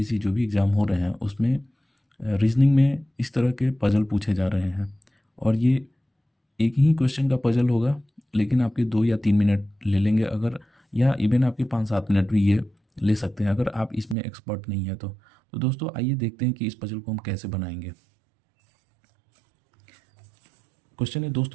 जो भी एग्ज़ाम हो रहे हैं उसमें रीजनिंग में इस तरह के पजल पूछे जा रहे हैं। और ये एक ही क्वेश्चन का पजल होगा, लेकिन आपके 2 या 3 मिनट ले लेंगे अगर, या इवन आपके 5-7 मिनट भी ये ले सकते हैं अगर आप इसमें एक्सपर्ट नहीं है तो दोस्तों आइए देखते हैं कि इस पजल को हम कैसे बनाएंगे। क्वेश्चन है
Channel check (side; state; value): left; drops out; at 14.2 s